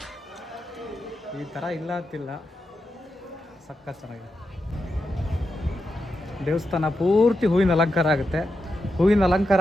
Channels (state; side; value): normal; both; correlation 0.87